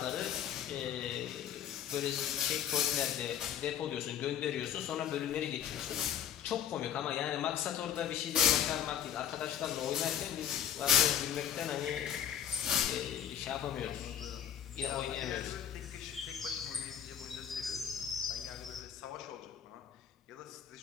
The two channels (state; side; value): quieter; right; 9.6 dB